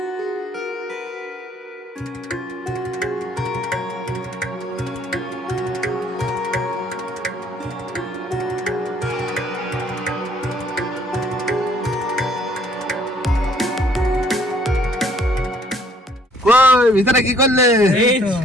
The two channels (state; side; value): normal; both; correlation 0.61